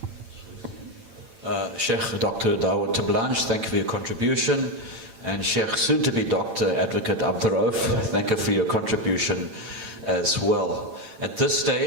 Sheikh Dr. Dawood Terblanche, thank you for your contribution. And Sheikh, soon to be Dr. Advocate Abduroaf, thank you for your contribution as well. At this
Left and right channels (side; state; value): left; late; 8.9 ms